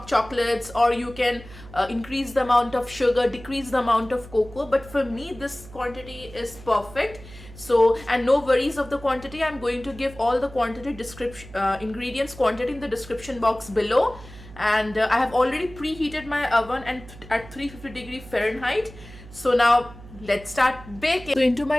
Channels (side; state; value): right; noise; hum, 18 dB below the sound